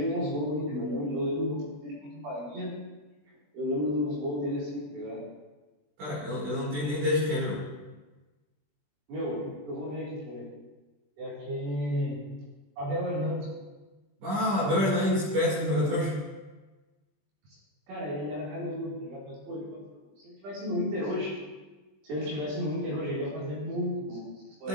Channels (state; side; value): late; left; 20 ms